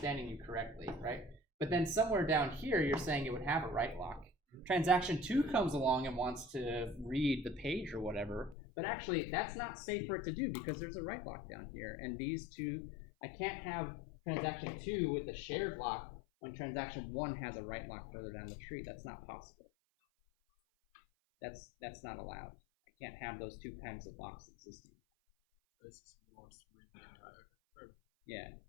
you correctly, right? But then somewhere down here, you're saying it would have a write lock. Transaction 2 comes along and wants to read the page or whatever, but actually that's not safe for it to do because there's a write lock down here. And these two, I can't have transaction 2 with the shared lock when transaction 1 has a write lock further down the tree. That's not possible. That's not allowed. I can't have those two kinds of locks existing. Yeah.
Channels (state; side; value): drops out; right; at 8.6 s